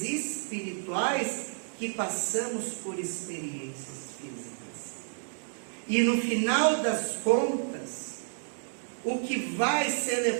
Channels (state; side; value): silent; left; 57 dB below the other